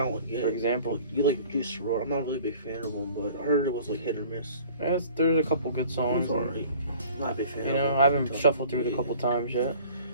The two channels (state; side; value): inverted; both; correlation -0.49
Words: get it. For example. You like Juice WRLD. I'm not really a big fan of him, but I heard it was like hit or miss. There's a couple good songs. It's alright. I'm not a big fan of him. I haven't shuffled through it a couple times yet.